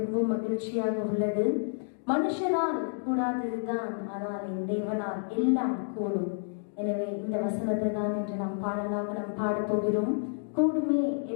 மகிழ்ச்சியாக உள்ளது. மனுஷனால் கூடாததுதான், ஆனால் என் தேவனால் எல்லாம் கூடும். எனவே இந்த வசனத்தை தான் என்று நாம் பாடலாக நாம் பாடப் போகிறோம். கூடுமே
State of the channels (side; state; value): right; silent; digital silence